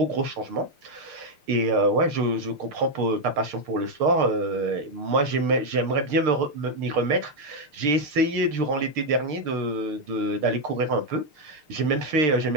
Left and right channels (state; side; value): late; left; 6.6 ms